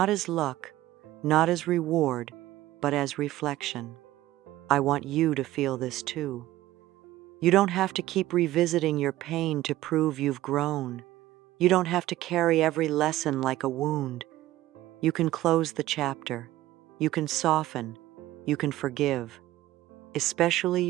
as luck, not as reward, but as reflection. I want you to feel this too. You don't have to keep revisiting your pain to prove you've grown. You don't have to carry every lesson like a wound. You can close the chapter. You can soften. You can forgive. Especially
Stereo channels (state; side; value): quieter; left; 15.6 dB